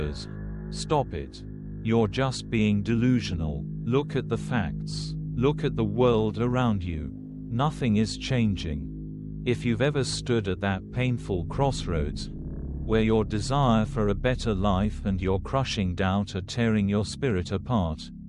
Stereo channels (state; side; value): identical; both; correlation 1.00